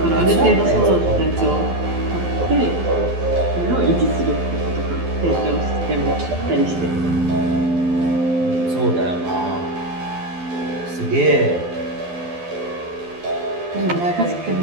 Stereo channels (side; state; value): left; late; 12 ms